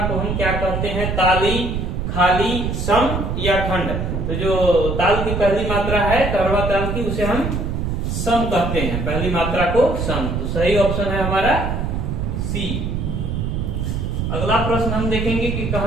को हम क्या कहते हैं? ताली, खाली, सम या खंड? तो जो ताल की पहली मात्रा है कहरवा ताल की, उसे हम सम कहते हैं। पहली मात्रा को सम। तो सही ऑप्शन है हमारा सी। अगला प्रश्न हम देखेंगे कि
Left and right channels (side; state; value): right; noise; rumble, 2 dB below the sound